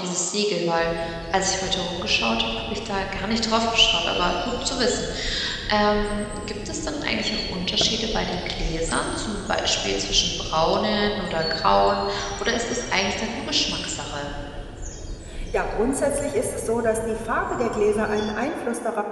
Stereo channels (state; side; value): identical; both; correlation 1.00